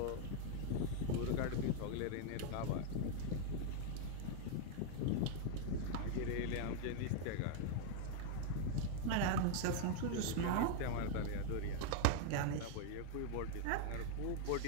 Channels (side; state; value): both; different; correlation 0.00